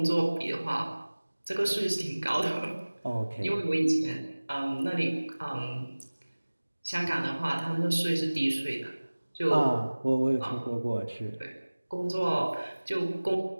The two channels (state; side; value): inverted; both; correlation -1.00